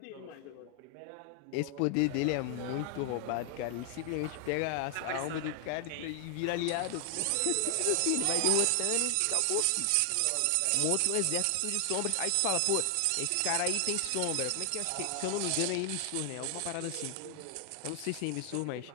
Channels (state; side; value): different; both; correlation 0.00